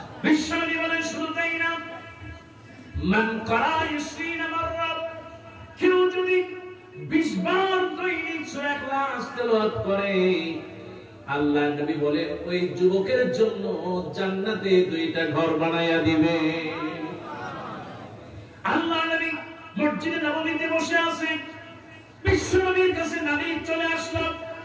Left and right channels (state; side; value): identical; both; correlation 1.00